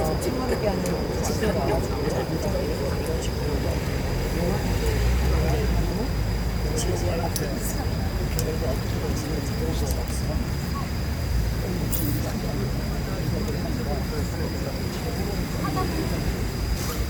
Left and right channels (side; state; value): both; identical; correlation 1.00